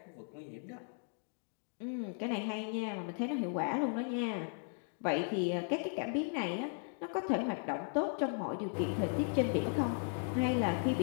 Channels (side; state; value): right; silent; 53 dB below the other